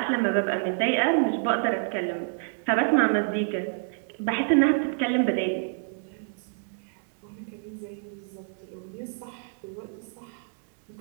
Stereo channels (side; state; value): left; silent; 59 dB below the other